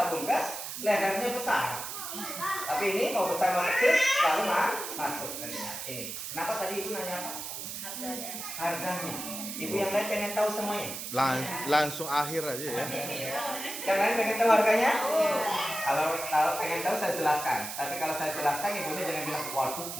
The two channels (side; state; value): right; noise; hiss, 7 dB below the sound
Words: gas lehernya besar. Tapi ini mau besar mau kecil lalu masuk ini. Kenapa tadi ibu nanya apa? Harganya. Ibu yang lain pengen tahu semuanya. Langsung akhir aja ya. Yang lain pengen tahu harganya? Kalau pengen tahu saya jelaskan. Tapi kalau saya jelaskan ibunya jangan bilang waduh